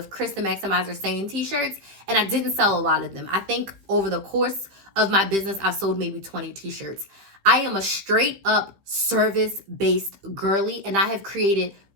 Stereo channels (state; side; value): late; left; 15 ms